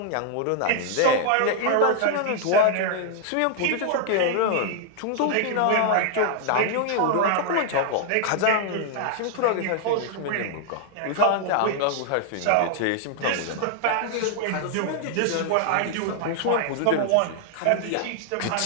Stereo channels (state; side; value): different; both; correlation 0.00